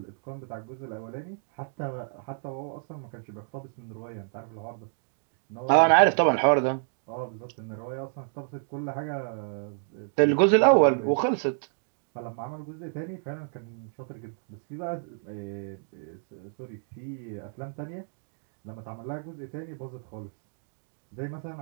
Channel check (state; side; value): silent; left; 58 dB below the other